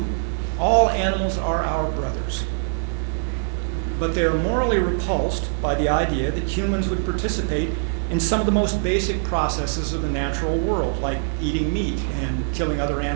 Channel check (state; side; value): silent; left; digital silence